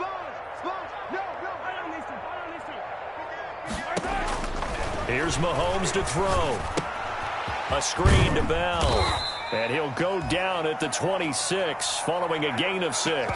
Here's Mahomes to throw. A screen to Bell. And he'll go down at the 26 following a gain of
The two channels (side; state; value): both; identical; correlation 1.00